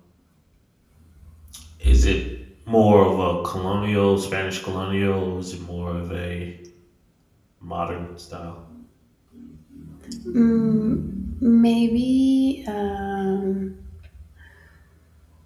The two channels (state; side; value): identical; both; correlation 1.00